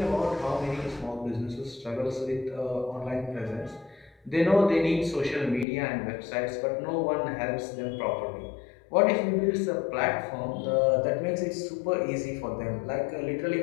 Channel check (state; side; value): drops out; right; at 5.7 s